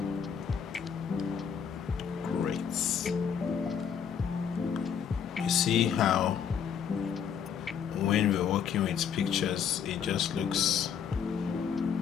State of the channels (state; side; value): quieter; right; 7.7 dB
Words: See how when we're working with pictures, it just can